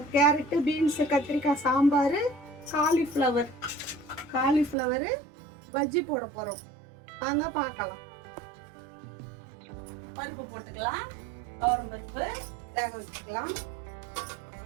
கேரட்டு, பீன்ஸு, கத்திரிக்காய் சாம்பார், காலிஃப்ளவரு பஜ்ஜி போட போகிறோம். வாங்க பார்க்கலாம். பருப்பு போட்டுக்கலாம். துவரம் பருப்பு வேக வச்சுக்கலாம்.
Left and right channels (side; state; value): left; drops out; at 4.8 s